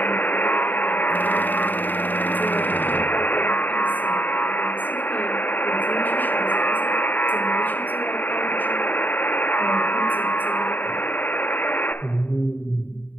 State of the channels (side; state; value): right; late; 0.087 ms